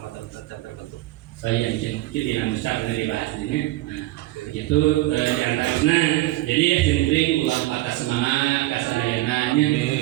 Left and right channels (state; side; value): quieter; left; 17.9 dB